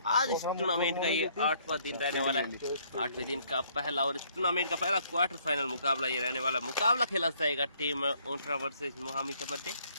आज इस टूर्नामेंट का ये 8वां दिन रहने वाला है। 8वें दिन का पहला और इस टूर्नामेंट का पहला क्वार्टर फाइनल मुकाबला ये रहने वाला। मुकाबला खेला जाएगा टीम ऊंटड़ा वर्सेस मोहामी कबड्डी।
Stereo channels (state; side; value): inverted; both; correlation -0.65